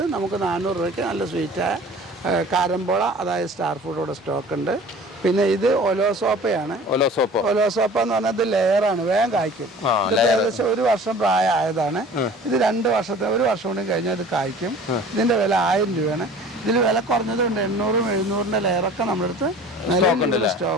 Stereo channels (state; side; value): normal; both; correlation 0.45